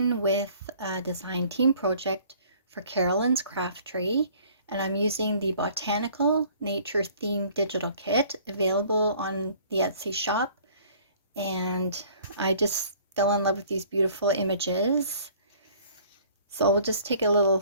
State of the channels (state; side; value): inverted; both; correlation -0.54